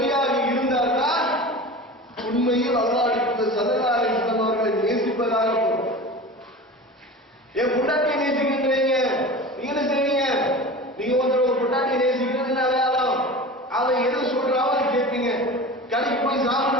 இருந்தால்தான் உண்மையில் அல்லாஹ்வுக்கு ஸல்லல்லாஹு அலைஹி வஸல்லம் அவர்களை நேசிப்பதாக பொருள். என் பொண்டாட்டியை நேசிக்கிறீங்க, நீங்க என்ன செய்வீங்க? நீங்க ஒரு பொண்டாட்டியை நேசிக்கிறதுன்னு அடையாளம். அவன் எது சொல்றாவோ அதை கேட்பீங்க. கடைக்கு போய் சாப்பிட்டு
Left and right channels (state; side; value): normal; both; correlation 0.33